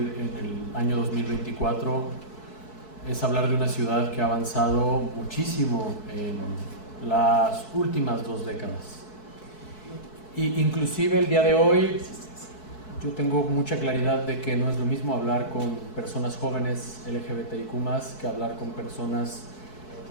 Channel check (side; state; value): right; late; 4.6 ms